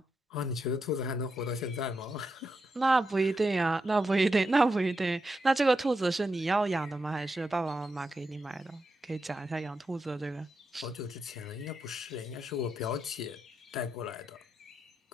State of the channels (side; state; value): both; normal; correlation 0.86